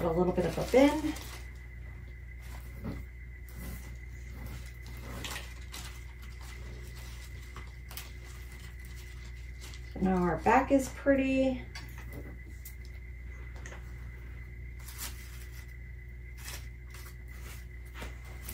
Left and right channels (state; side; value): identical; both; correlation 1.00